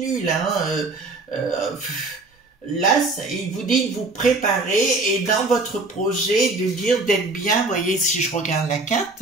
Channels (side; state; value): left; quieter; 3.3 dB